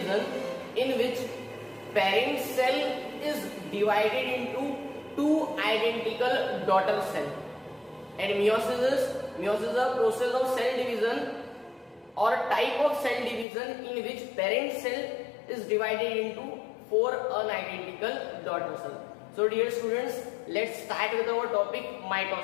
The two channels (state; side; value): drops out; right; at 13.5 s